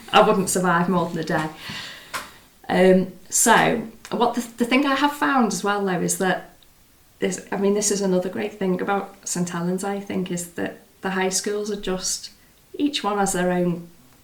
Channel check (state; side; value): identical; both; correlation 1.00